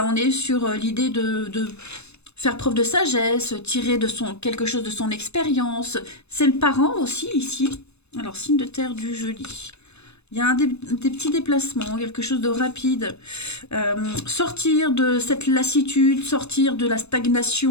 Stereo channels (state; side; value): late; right; 0.80 ms